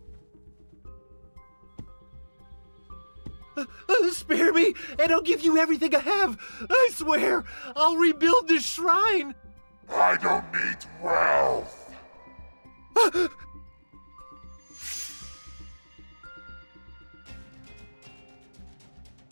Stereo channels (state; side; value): inverted; both; correlation -1.00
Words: Spare me, and I'll give you everything I have. I swear, I'll rebuild this shrine. I don't need wealth.